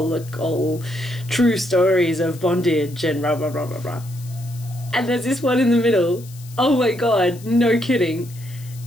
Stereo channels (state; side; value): noise; left; hiss, 21 dB below the sound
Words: true stories of bondage and blah blah blah blah blah. And there's this one in the middle, oh my god, no kidding,